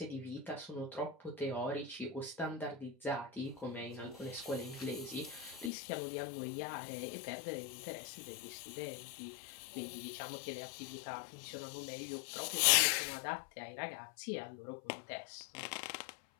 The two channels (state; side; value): drops out; right; at 5.7 s